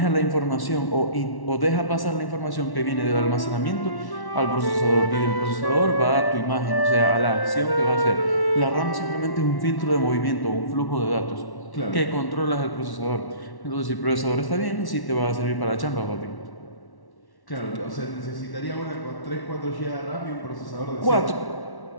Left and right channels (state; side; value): late; right; 1.1 ms